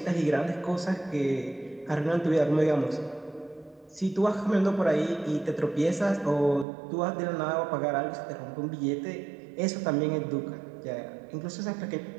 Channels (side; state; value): left; drops out; at 6.7 s